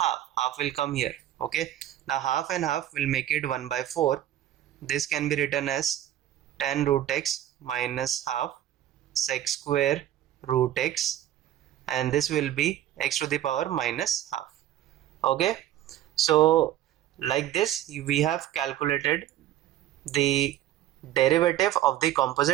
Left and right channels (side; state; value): left; quieter; 12.5 dB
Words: will come here. Okay, now half and half will make it 1 by 4. This can be written as tan root x minus half sec square root x, and this will be x to the power minus half. Okay, so like this we have calculated the derivative of the